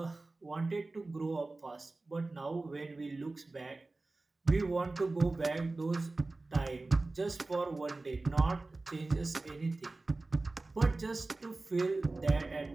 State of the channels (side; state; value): left; quieter; 3.2 dB